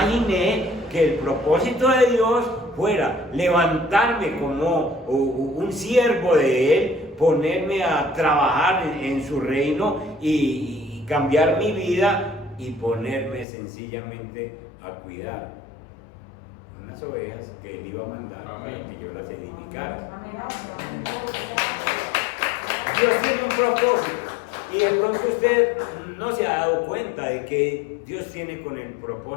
que el propósito de Dios fuera levantarme como un siervo de Él, ponerme a trabajar en su reino y cambiar mi vida y ponerme sencillamente a cuidar unas ovejas que Él iba a mandar para que yo las edificara. Dios tiene un propósito, y de pronto usted no se ha dado cuenta de que Dios tiene con el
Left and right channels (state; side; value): drops out; right; at 13.5 s